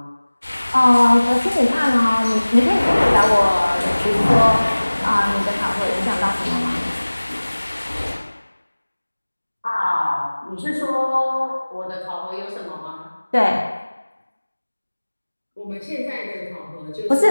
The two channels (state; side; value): inverted; both; correlation -1.00